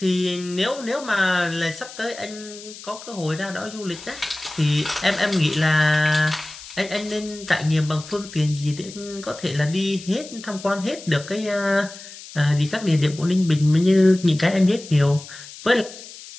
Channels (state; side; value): noise; left; hiss, 16 dB below the sound